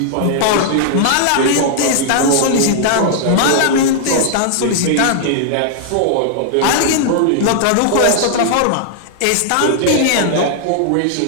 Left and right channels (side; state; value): both; different; correlation -0.01